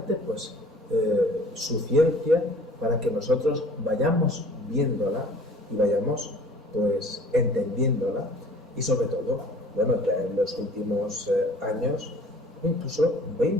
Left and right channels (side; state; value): both; normal; correlation 0.49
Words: pues, su ciencia para que nosotros vayamos viéndola y vayamos pues, entendiéndola, y sobre todo, bueno, ya en los últimos años, incluso